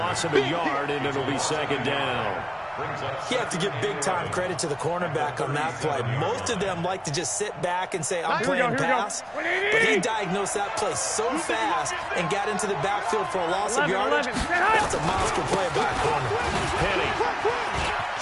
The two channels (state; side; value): identical; both; correlation 1.00